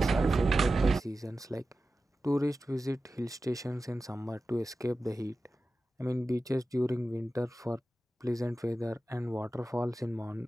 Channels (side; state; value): both; normal; correlation 0.94